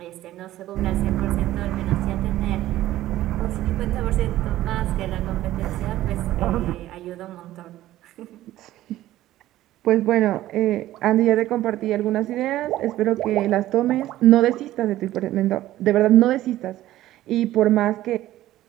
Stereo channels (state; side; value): quieter; left; 14.6 dB